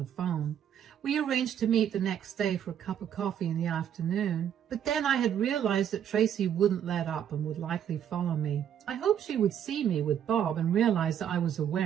phone. We arranged to meet the next day for a cup of coffee in the afternoon, but then I had realized that Tracy wouldn't let up and would likely follow me. I hoped she would see me with Bob and realize that I was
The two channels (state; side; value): quieter; left; 9.4 dB